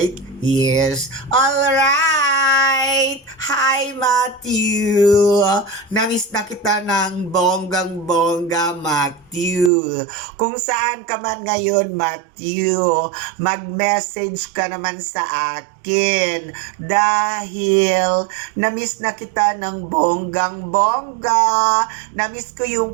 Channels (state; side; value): drops out; left; at 9.7 s